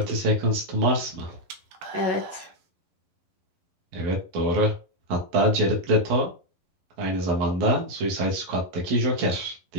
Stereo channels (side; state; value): left; late; 11 ms